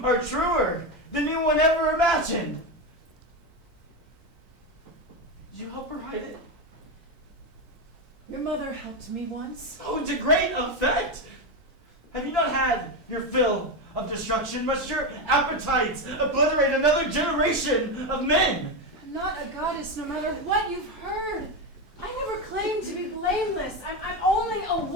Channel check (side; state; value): both; normal; correlation 0.12